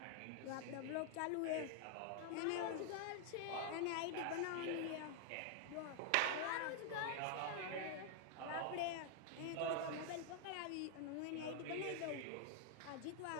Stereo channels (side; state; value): both; different; correlation 0.00